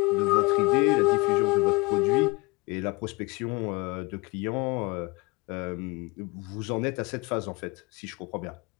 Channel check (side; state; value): right; quieter; 25.3 dB